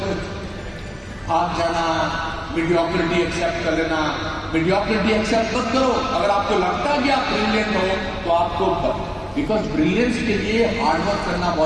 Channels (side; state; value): both; identical; correlation 1.00